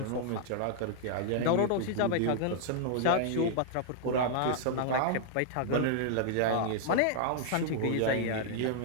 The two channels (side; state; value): both; different; correlation -0.01